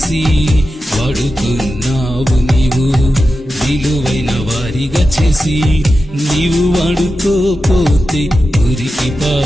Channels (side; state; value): both; normal; correlation 0.91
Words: వాడుకున్నావు నీవు విలువైన వారిగా చేసి. నీవు వాడుకోపోతే మురికి